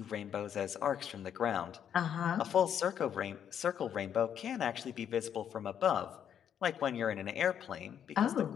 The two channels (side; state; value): right; quieter; 8.9 dB